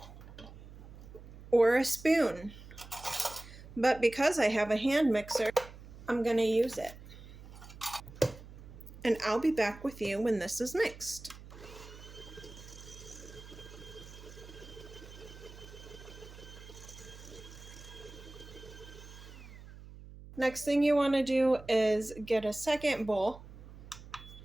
or a spoon, but because I have a hand mixer, I'm going to use it. And I'll be back with you when this is mixed. Next thing you want to do is get a second bowl,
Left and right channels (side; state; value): right; noise; hum, 16 dB below the sound